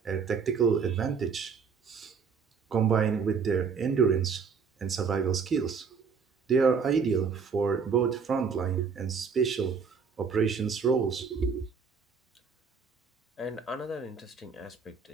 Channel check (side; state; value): left; quieter; 5.8 dB